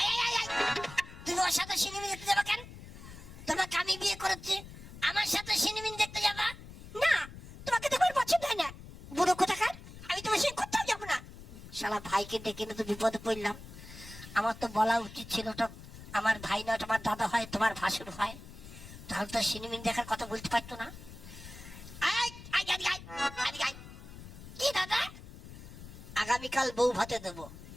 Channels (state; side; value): noise; left; rumble, 15 dB below the sound